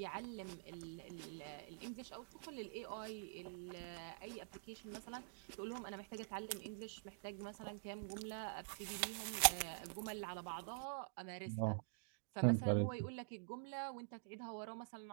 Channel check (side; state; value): left; silent; digital silence